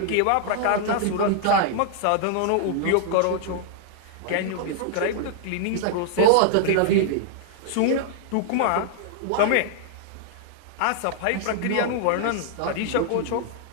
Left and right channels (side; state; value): both; different; correlation -0.01